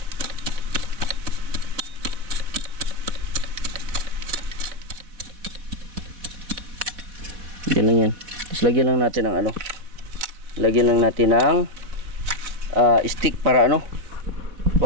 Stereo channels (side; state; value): left; late; 4.1 ms